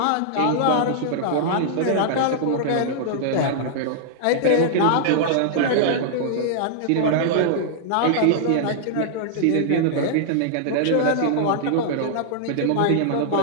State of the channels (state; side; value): different; both; correlation -0.01